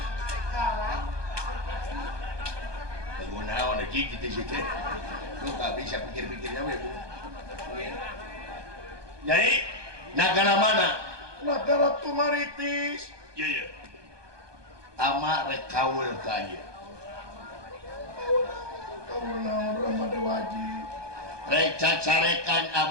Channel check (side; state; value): left; late; 1.2 ms